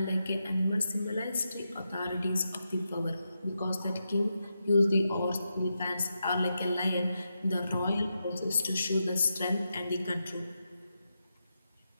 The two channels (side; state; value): both; inverted; correlation -0.87